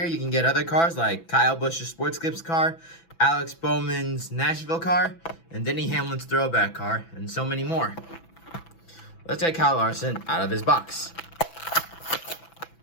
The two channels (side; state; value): right; late; 6.0 ms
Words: you can get other cars like Kyle Busch's Sports Clips car, Alex Bowman's Nashville car, and Denny Hamlin's Throwback car, and so many more. Let's get Kyle Larson out of his box.